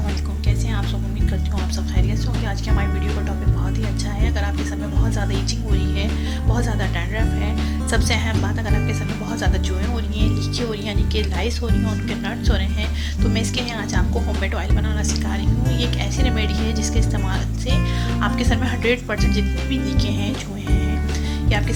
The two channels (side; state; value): both; identical; correlation 1.00